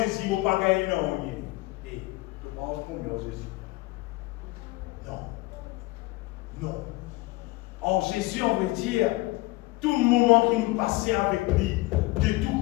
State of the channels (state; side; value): quieter; right; 21.5 dB